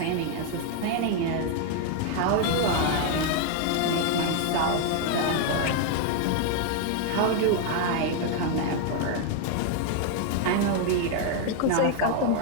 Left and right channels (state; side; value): different; both; correlation 0.01